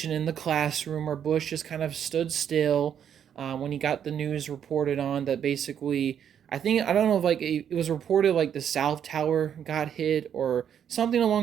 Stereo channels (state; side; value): quieter; left; 8.8 dB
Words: in the classroom where Bush just kind of stood still when he got the news reported on that basically, I don't know if like it was reported like the South Tower got hit or something